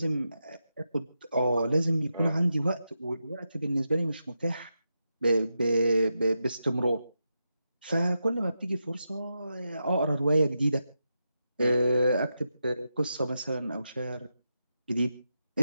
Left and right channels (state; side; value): inverted; both; correlation -0.87